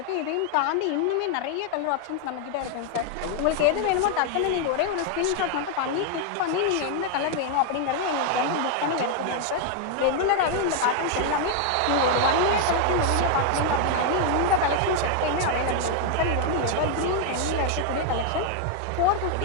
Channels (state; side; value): different; both; correlation 0.00